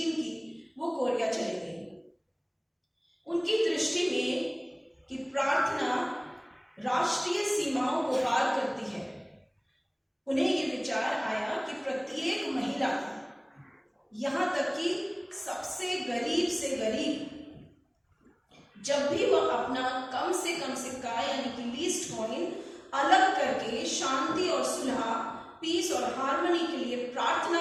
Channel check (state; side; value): identical; both; correlation 1.00